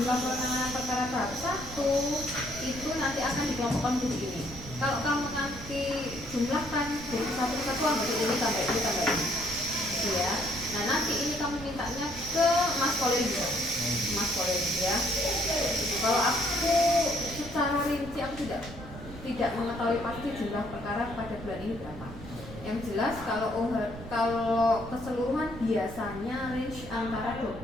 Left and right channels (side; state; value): right; noise; rumble, 13 dB below the sound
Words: penanganan perkara tahap 1 itu nanti akan dikelompokkan begini. Kalau kamu nanti jumlahkan dari satu kesatuan, berarti ini tambah ini tambah ini, gitu ya. Nah nanti ini kamu mintanya ke Mas Kolegi, Mas Kolegi ya. Kalau aku secara rinci aku tidak mengetahui pasti jumlah perkara pada bulan ini berapa. Yang jelas kalau keseluruhan biasanya range antara